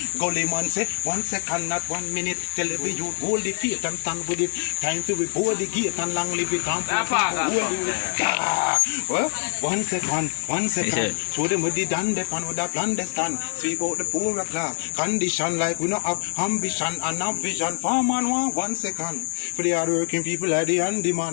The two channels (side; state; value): right; silent; digital silence